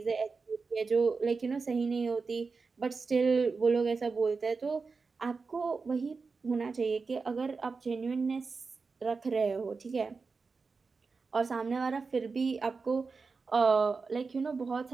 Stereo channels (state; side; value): quieter; left; 4.6 dB